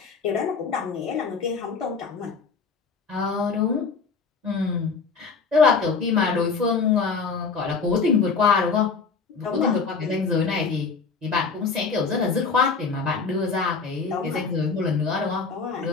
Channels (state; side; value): quieter; right; 5.0 dB